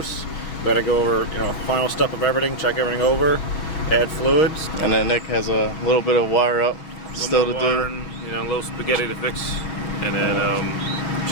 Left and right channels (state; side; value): late; right; 6.3 ms